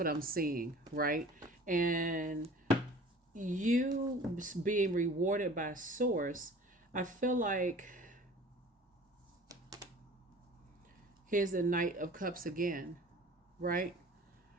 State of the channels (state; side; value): normal; both; correlation 0.45